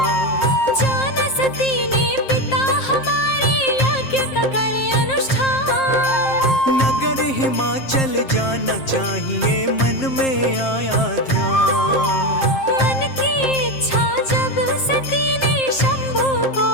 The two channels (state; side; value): late; right; 7.6 ms